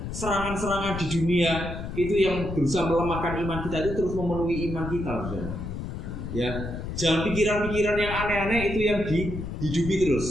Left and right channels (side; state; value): left; noise; rumble, 6 dB below the sound